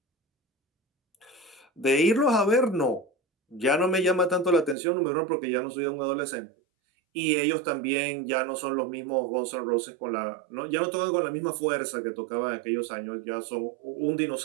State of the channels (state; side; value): drops out; left; at 4.8 s